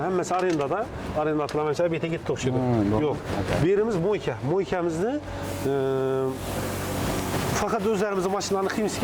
hemmesi arendada. Arenda atılamayınca bete gitti okşudu. Yok. Birimiz moyka. Moykamizni fakat özlerimizin maşınlarını kıyımsız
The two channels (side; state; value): both; identical; correlation 1.00